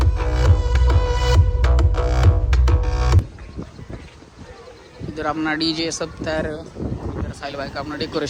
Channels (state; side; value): identical; both; correlation 1.00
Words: इधर अपना डीजे सब तैयार है. इधर साहिल भाई का अपना